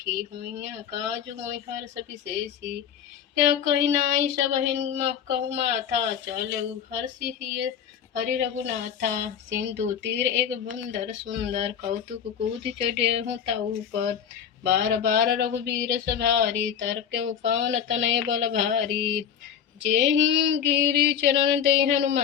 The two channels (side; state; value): right; quieter; 8.3 dB